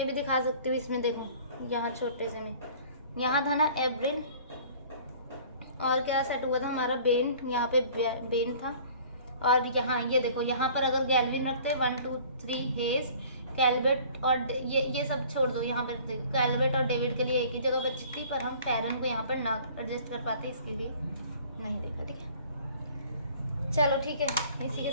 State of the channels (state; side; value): inverted; both; correlation -0.50